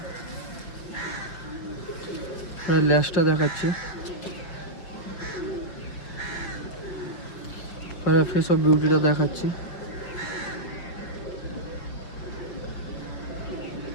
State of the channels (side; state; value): right; late; 6.0 ms